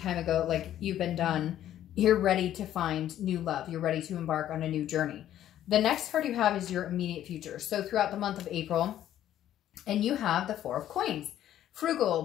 ago, like you've been done. You're ready to find new love. You're ready to embark on a new journey. The next card you have is your immediate future. So throughout the month of April, and you have the Four of Coins.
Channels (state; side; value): quieter; right; 11.8 dB